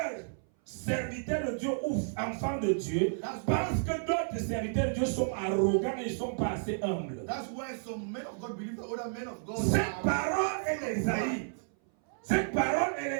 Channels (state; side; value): silent; left; 57 dB below the other